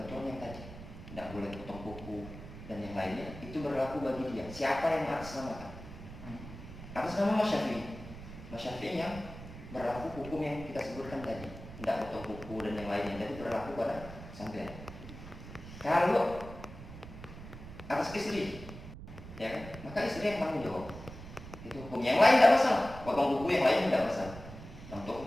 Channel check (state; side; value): noise; right; rumble, 13 dB below the sound